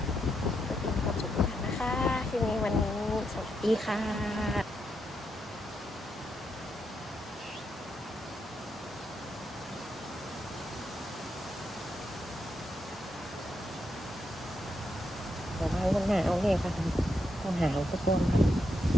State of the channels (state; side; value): normal; both; correlation 0.81